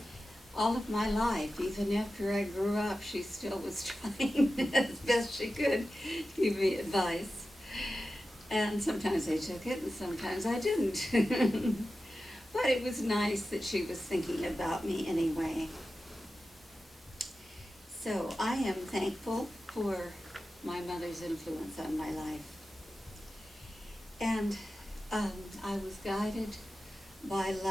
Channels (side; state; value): both; normal; correlation 0.93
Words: all of my life. Even after I grew up, she still was trying as best she could to give me advice. And sometimes I took it and sometimes I didn't. But it was nice that she was thinking about me anyway. So I am thankful for my mother's influence on my life. And I was guided by